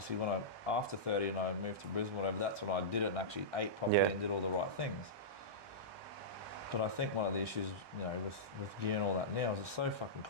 when after 30 and I moved to Brisbane, whatever, that's when I did it and actually ate properly Yeah. and did all the right things. But I think one of the issues, you know, with gear and all that now is it's so fucking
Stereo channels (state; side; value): late; left; 1.2 ms